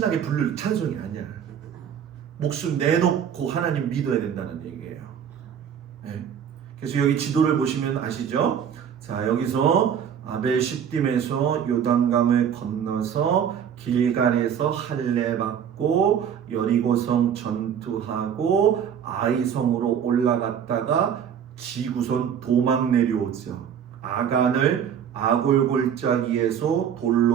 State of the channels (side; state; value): left; quieter; 8.4 dB